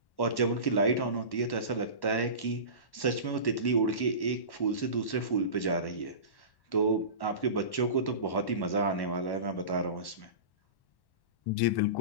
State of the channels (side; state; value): right; late; 1.1 ms